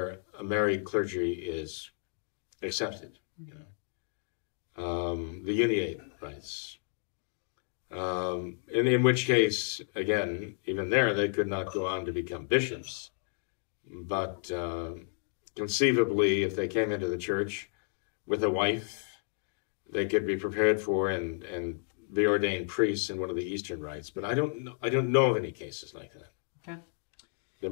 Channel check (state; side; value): silent; right; 57 dB below the other